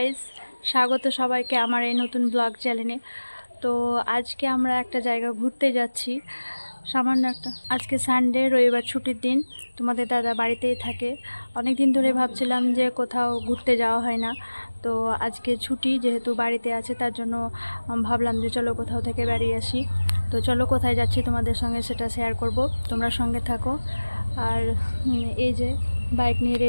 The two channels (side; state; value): both; inverted; correlation -1.00